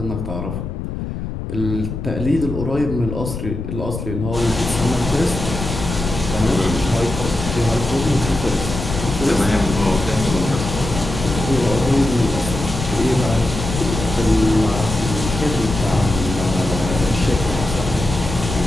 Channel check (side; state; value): left; noise; rumble, 6 dB below the sound